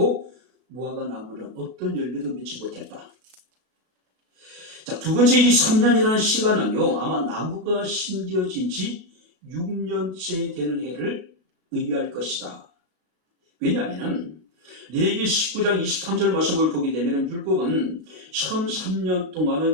무화과 나무는 어떤 열매도 맺지 못했다. 자, 두 번째 이 3년이라는 시간은요, 아마 나무가 심겨진 지 6년째 되는 해를 의미할 것이다. 왜냐하면 레위기 19장 23절 말씀을 보게 되면 율법은 처음 3년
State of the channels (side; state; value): left; late; 37 ms